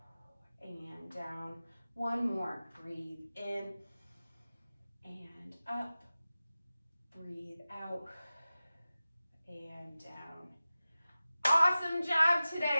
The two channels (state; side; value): inverted; both; correlation -0.96